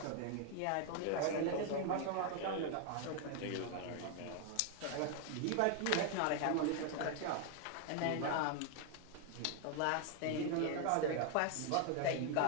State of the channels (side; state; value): both; different; correlation 0.00